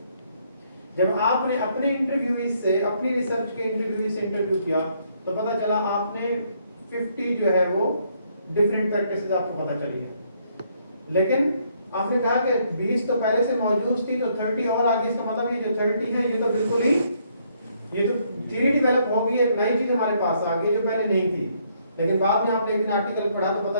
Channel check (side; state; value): both; inverted; correlation -0.70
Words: जब आपने अपने इंटरव्यूज से, अपनी रिसर्च के इंटरव्यू से इंटरव्यू किया तो पता चला आपने 50 जो है वो डिफरेंट प्रैक्टिसेस आपको पता चली है। लेकिन आपने कहा कि 20 तो पहले से मौजूद थी तो 30 और आगे, इसका मतलब ये जो 30 है ये तो बिल्कुल ही ये तो थ्योरी डेवलप हो गई, एक नई चीज हमारे पास आ गई जो पहले नहीं थी। लेकिन बाद में आपने एक आर्टिकल पढ़ा तो